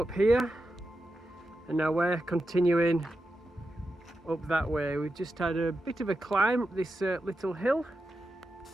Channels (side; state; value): both; normal; correlation 0.89